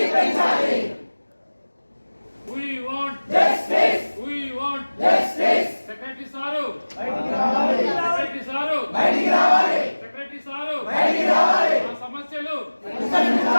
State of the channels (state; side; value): inverted; both; correlation -1.00